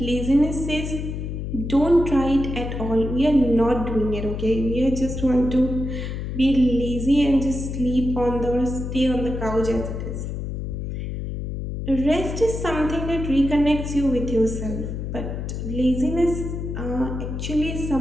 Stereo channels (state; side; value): noise; left; hum, 5 dB below the sound